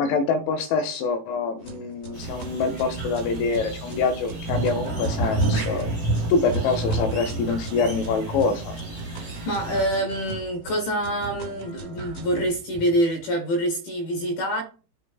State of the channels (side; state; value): right; late; 18 ms